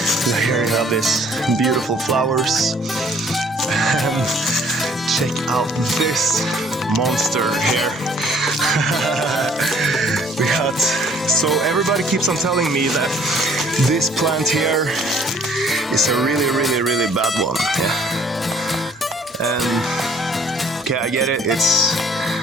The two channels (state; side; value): normal; both; correlation 0.59